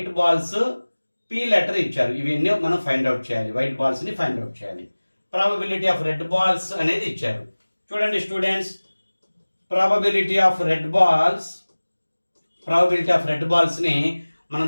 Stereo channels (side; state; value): both; inverted; correlation -1.00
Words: balls P letter ఇచ్చారు. ఇవన్నీ మనం find out చేయాలి. వైట్ బాల్స్ ని ఫైండ్ అవుట్ చేయాలి. ప్రాబబిలిటీ ఆఫ్ రెడ్ బాల్స్ అనేది ఇచ్చారు. చూడండి students, probability of red balls ని మనం